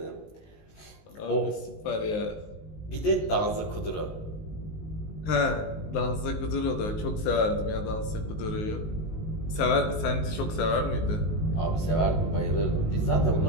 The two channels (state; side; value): late; right; 19 ms